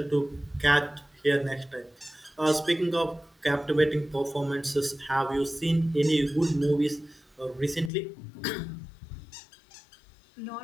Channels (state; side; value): drops out; right; at 7.9 s